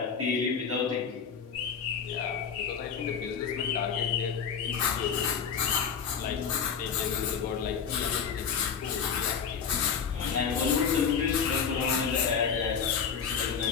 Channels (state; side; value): quieter; right; 6.7 dB